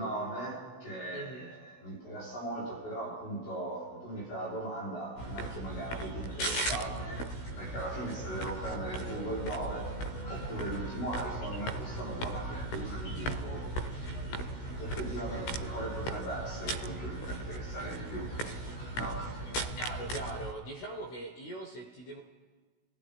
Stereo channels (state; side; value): late; right; 16 ms